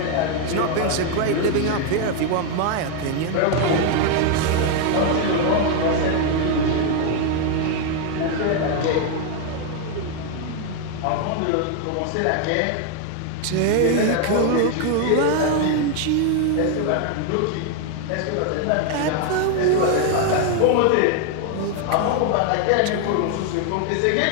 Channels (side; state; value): both; different; correlation 0.01